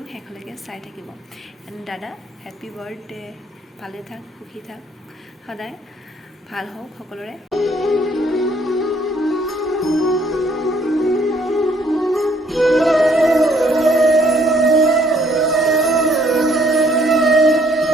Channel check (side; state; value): both; normal; correlation 0.65